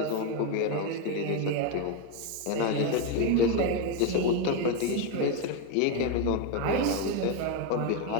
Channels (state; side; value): different; both; correlation 0.03